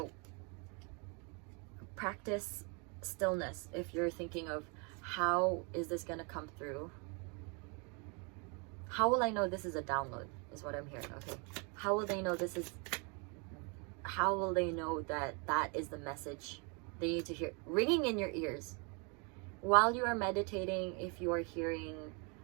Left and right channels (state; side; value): quieter; left; 33.5 dB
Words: practice stillness if you're thinking of how is this going to come through. How will I know this is a download is what I'm hearing. Okay, how will they know this is, how will they know that that is the message they need to hear ringing in your ears while you are meditating? If you are hearing